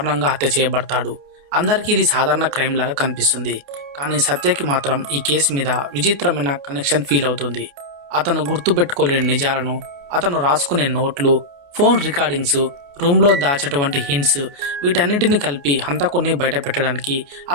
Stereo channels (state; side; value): late; left; 28 ms